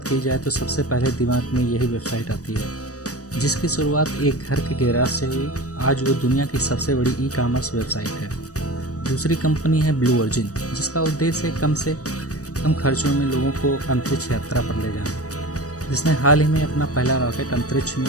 की जाए तो सबसे पहले दिमाग में यही वेबसाइट आती है, जिसकी शुरुआत एक घर के गैराज से हुई। आज वो दुनिया की सबसे बड़ी ई कॉमर्स वेबसाइट है। दूसरी कंपनी है ब्लू ओरिजिन, जिसका उद्देश्य है कम से कम खर्चों में लोगों को अंतरिक्ष यात्रा पर ले जाना, जिसने हाल ही में अपना पहला रॉकेट अंतरिक्ष में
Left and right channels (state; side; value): late; right; 0.66 ms